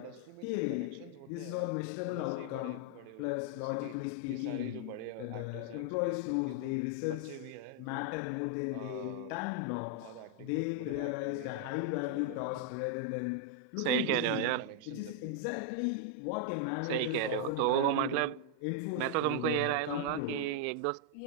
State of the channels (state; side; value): different; both; correlation 0.00